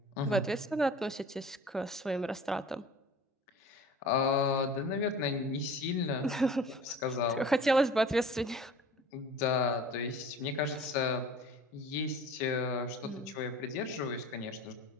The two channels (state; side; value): normal; both; correlation 0.43